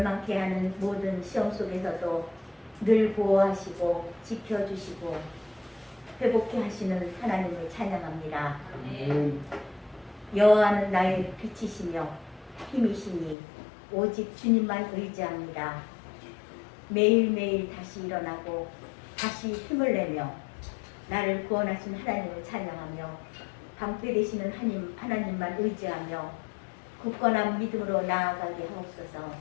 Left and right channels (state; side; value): drops out; right; at 13.4 s